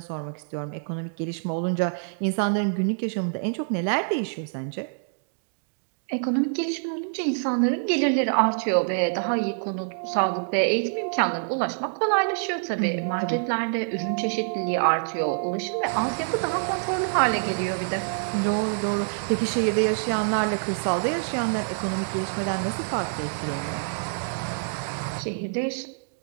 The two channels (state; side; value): silent; left; digital silence